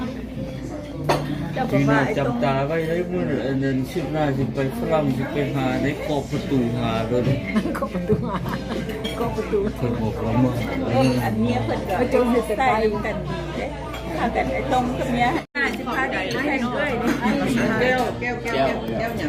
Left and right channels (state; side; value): identical; both; correlation 1.00